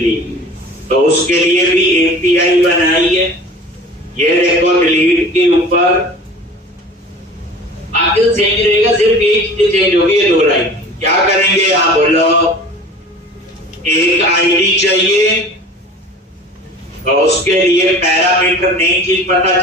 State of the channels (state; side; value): normal; both; correlation 0.42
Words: तो उसके लिए भी एपीआई बनाई है। ये देखो डिलीट के ऊपर आगे तो सेम ही रहेगा, सिर्फ एक चीज चेंज होगी, ये 2 लाइन। क्या करेंगे यहां बोलो, एक आईडी चाहिए, तो उसके लिए पैरामीटर नई चीज पता